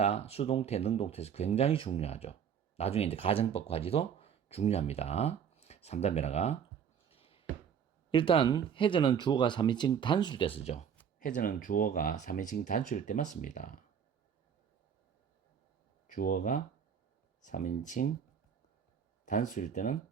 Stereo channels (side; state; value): left; quieter; 7.8 dB